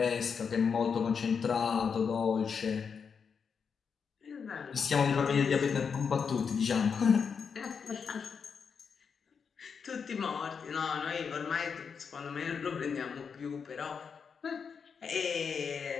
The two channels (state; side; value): quieter; right; 6.2 dB